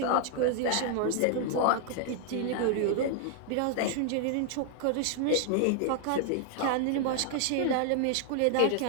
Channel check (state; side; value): different; both; correlation 0.00